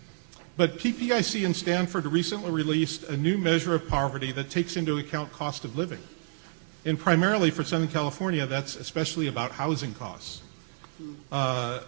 But PPIC in Stanford recently released a new measure of poverty that takes into account cost of living. And primarily for Southern California, that's especially about housing costs.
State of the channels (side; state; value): left; silent; 59 dB below the other